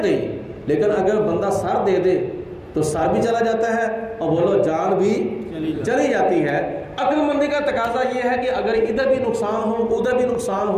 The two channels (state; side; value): identical; both; correlation 1.00